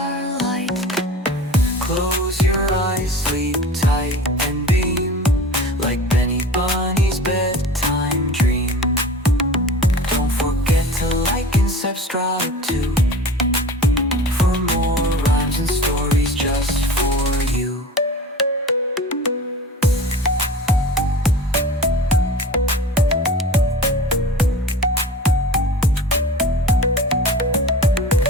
Close your eyes, sleep tight and beam, like Benny Bunny's bedtime dream. Don't forget to like and subscribe too, for more rhymes and stories just for you.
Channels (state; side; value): normal; both; correlation 0.38